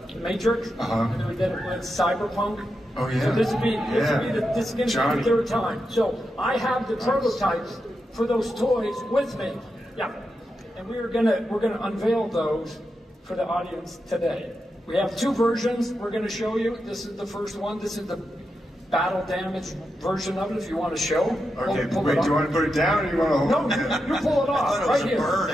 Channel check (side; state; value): both; normal; correlation 0.87